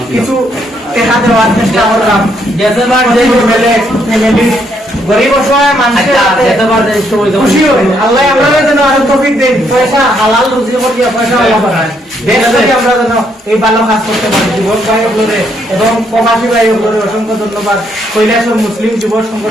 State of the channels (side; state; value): both; normal; correlation 0.73